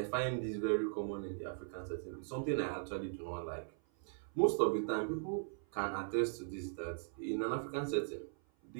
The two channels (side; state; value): left; silent; 52 dB below the other